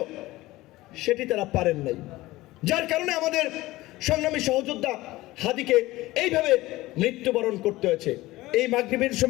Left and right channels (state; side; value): quieter; right; 18.3 dB